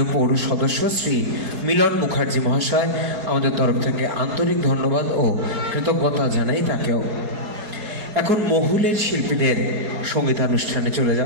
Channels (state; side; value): late; left; 4.7 ms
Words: পৌর সদস্য শ্রী মিলন মুখার্জি মহাশয়। আমাদের তরফ থেকে আন্তরিক ধন্যবাদ ও কৃতজ্ঞতা জানাই তাকেও। এখন মহুলের শিল্পীদের সঙ্গীতানুষ্ঠানে চলে